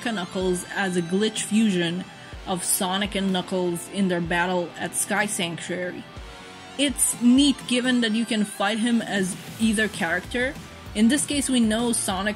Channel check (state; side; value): identical; both; correlation 1.00